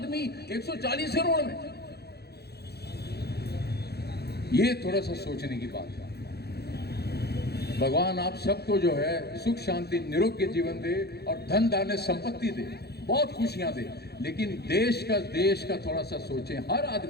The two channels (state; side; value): late; right; 0.47 ms